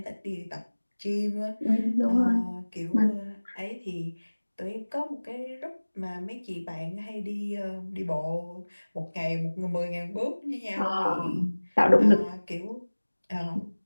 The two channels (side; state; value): both; inverted; correlation -1.00